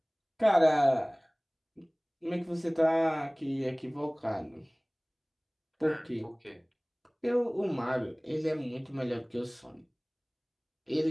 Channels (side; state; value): both; identical; correlation 1.00